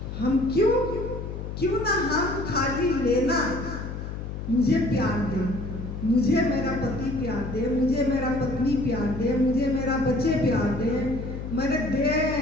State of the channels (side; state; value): left; noise; hum, 7 dB below the sound